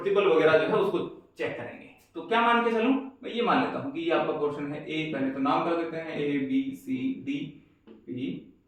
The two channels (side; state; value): both; identical; correlation 1.00